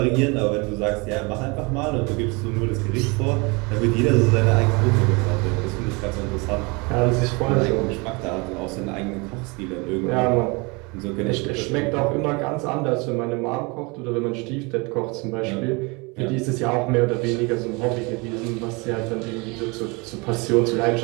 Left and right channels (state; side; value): quieter; left; 28.2 dB